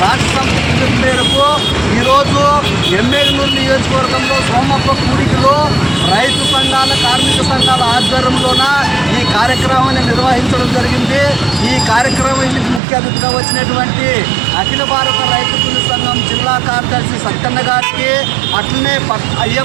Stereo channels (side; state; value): left; drops out; at 12.8 s